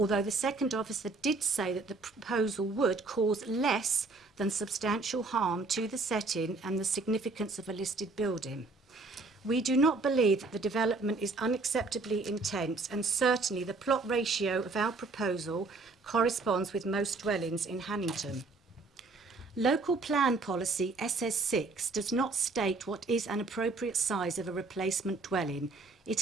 the second officer did say that the proposal would cause less than substantial harm to the setting and the significance of a listed building. We do not believe that the development is unacceptably intense, and certainly the plot ratio of our proposal corresponds with most dwellings in Hannington. Local Plan Policy SS6 does not state what is an appropriate size of a replacement dwelling.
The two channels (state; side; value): quieter; left; 3.6 dB